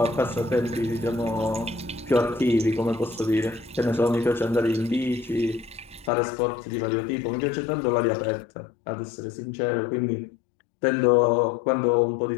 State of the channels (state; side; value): drops out; right; at 6.1 s